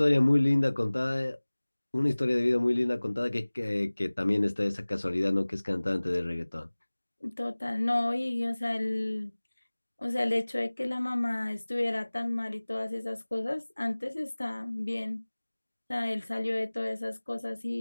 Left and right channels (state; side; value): inverted; both; correlation -1.00